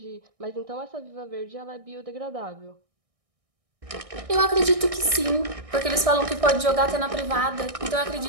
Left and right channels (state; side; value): late; left; 1.6 ms